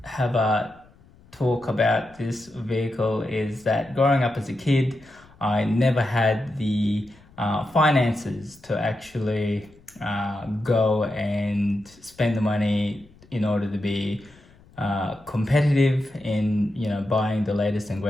have a talk about this vehicle is that growing up as a kid, I never had the finances to actually go and spend the money in order to be competitive in buying the latest and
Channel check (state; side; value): noise; left; rumble, 27 dB below the sound